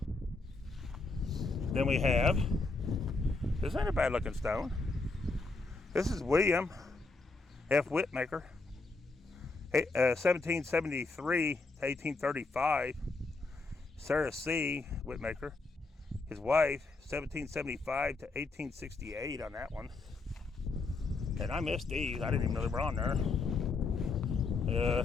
Then we have, this ain't a bad looking stone. This is William F. Whitmaker, 1773 to 1835. Sarah C. Whitmaker, his wife, 1775 to 1868 on that one. And I missed these. I didn't even know they were on there.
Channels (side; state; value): right; quieter; 3.6 dB